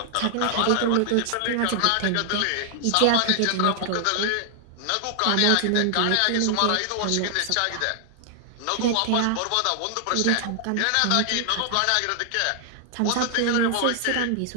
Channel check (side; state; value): both; different; correlation 0.00